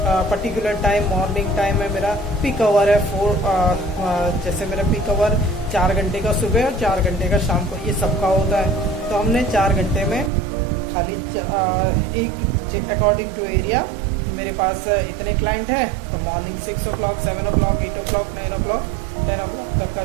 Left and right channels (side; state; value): left; drops out; at 10.3 s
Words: पर्टिकुलर टाइम, मॉर्निंग टाइम है मेरा, पीक आवर है 4, जैसे मेरा पीक आवर 4 घंटे का सुबह और 4 घंटे का शाम को, ये सबका होता है। तो हमने 4 घंटे में खाली एक अकॉर्डिंग टू एरिया, मेरे पास इतने क्लाइंट है तो morning 6 o'clock, 7 o'clock, 8 o'clock, 9 o'clock, 10 o'clock तक का